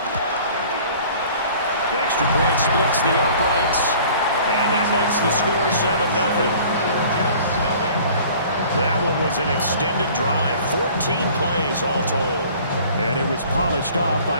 The extra point splits the uprights, and that makes the score 7-0. That one was an extended drive, 14 plays all told. And it was polished off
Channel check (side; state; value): both; inverted; correlation -0.49